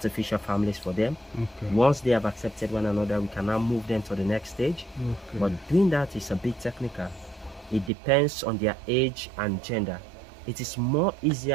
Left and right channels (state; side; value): drops out; left; at 7.9 s